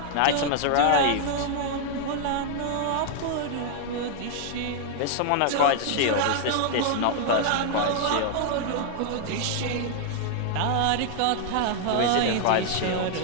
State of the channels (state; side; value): different; both; correlation 0.00